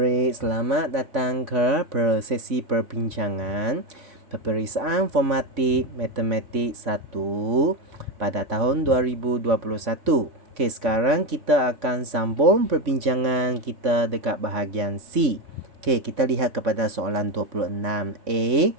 selamat datang ke sesi perbincangan peperiksaan formatik matematik 1 pada tahun 2021. Okey, sekarang kita akan sambung perbincangan kita dekat bahagian C. Okey, kita lihat kepada soalan 26A.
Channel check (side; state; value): left; late; 3.5 ms